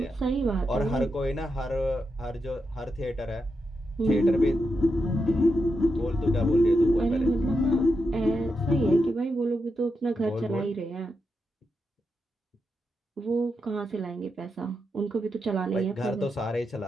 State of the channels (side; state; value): both; normal; correlation 0.86